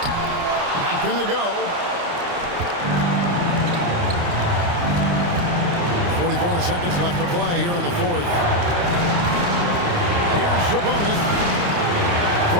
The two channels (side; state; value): left; late; 29 ms